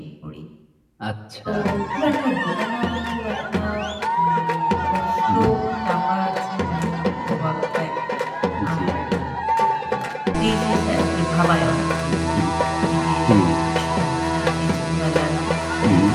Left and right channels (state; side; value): identical; both; correlation 1.00